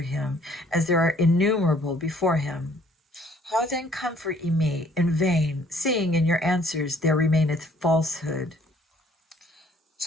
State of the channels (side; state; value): both; normal; correlation 0.60